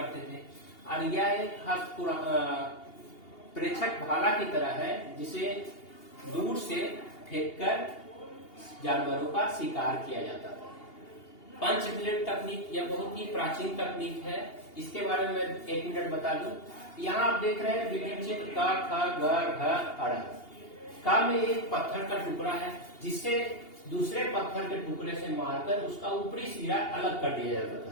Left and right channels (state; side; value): late; right; 2.8 ms